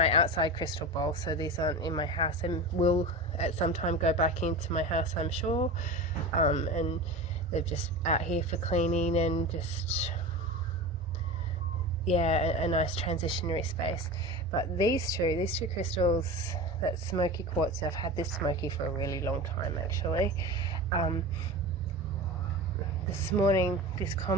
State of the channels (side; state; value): both; normal; correlation 0.29